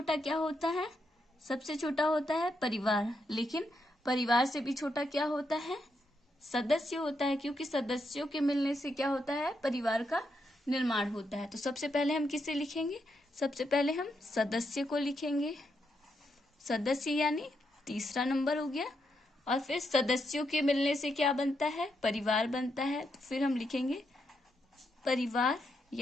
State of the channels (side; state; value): both; normal; correlation 0.81